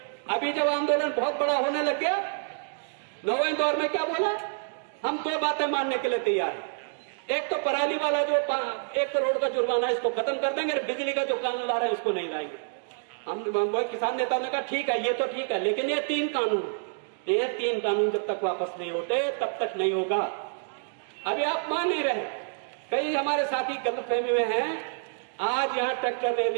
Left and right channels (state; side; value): silent; left; digital silence